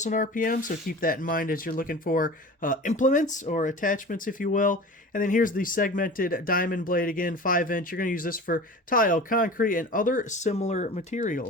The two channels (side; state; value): both; normal; correlation 0.37